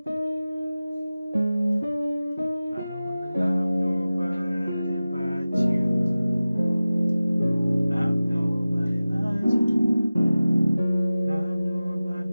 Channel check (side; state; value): both; inverted; correlation -0.96